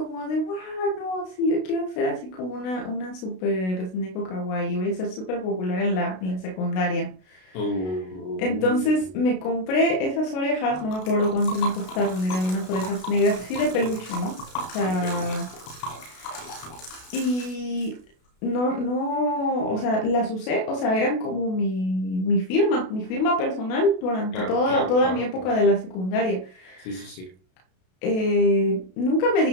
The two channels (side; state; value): right; late; 32 ms